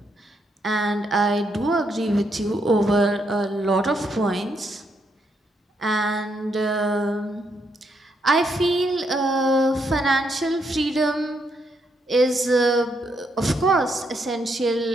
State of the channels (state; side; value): normal; both; correlation 0.77